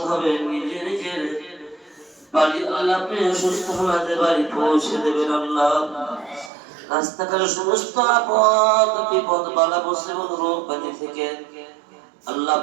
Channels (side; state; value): left; drops out; at 6.5 s